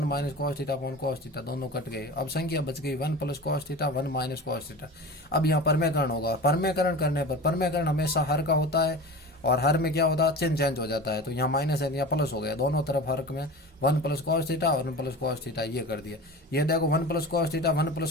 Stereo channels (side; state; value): both; normal; correlation 0.33